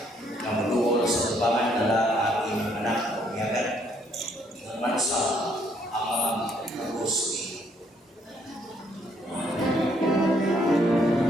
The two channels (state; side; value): normal; both; correlation 0.68